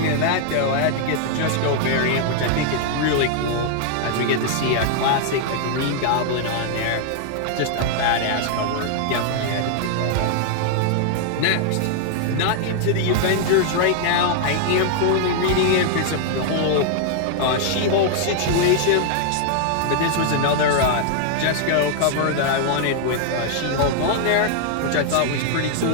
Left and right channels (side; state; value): both; different; correlation 0.00